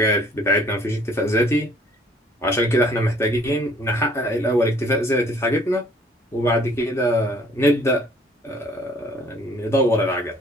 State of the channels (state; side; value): normal; both; correlation 0.58